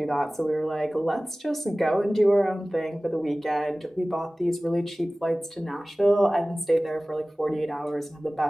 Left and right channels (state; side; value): normal; both; correlation 0.97